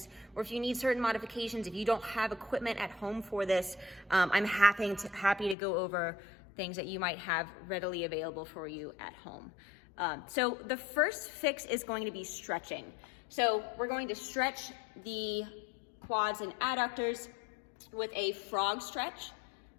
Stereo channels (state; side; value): drops out; right; at 5.6 s